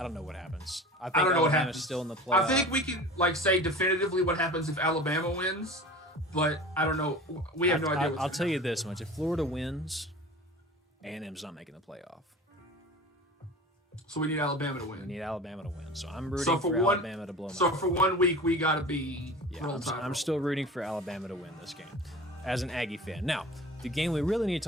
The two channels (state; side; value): normal; both; correlation 0.37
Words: don't know what happens. I think don't know what Alabama's happens. still in the playoff. I think we can say definitively what happens if Alabama wins, but I don't know. We have no idea. I'll tell you this much: if Florida wins, A&M's not making the playoff. So we need Alabama to win. We need Alabama to win. So I'm rooting for Alabama to blow them out. So for 1 week, we got to be I'm still rooting for Alabama to win this game as an Aggie fan. Now, the game we really need to